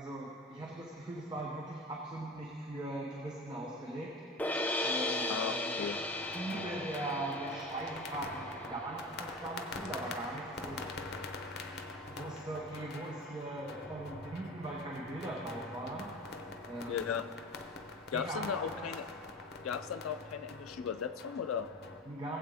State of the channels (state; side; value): normal; both; correlation 0.32